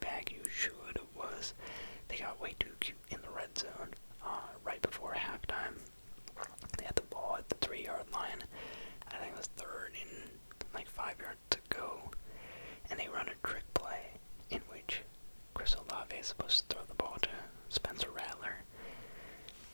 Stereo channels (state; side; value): inverted; both; correlation -1.00